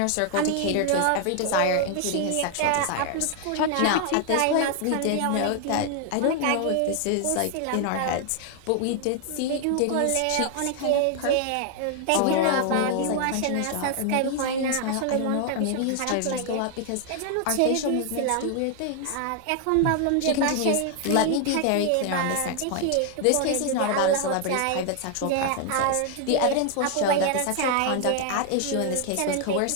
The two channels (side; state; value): both; different; correlation 0.00